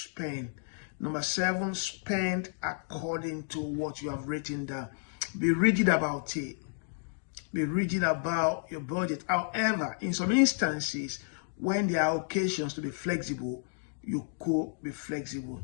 Number 7, spend according to what you have written down. Be rigid about it. Be rigid about your budget. However, in some instances, when there are occasions to be flexible, you could be flexible.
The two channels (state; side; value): silent; right; digital silence